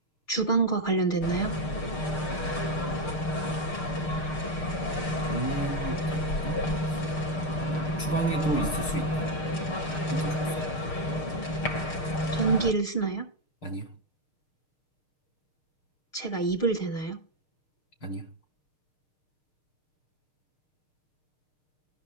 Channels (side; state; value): right; late; 6.6 ms